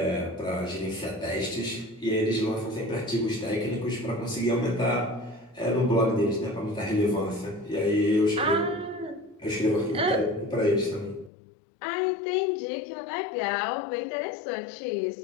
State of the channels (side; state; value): right; drops out; at 11.3 s